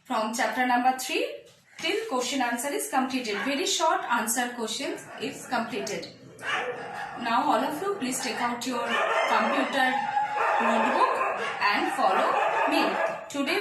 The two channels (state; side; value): identical; both; correlation 1.00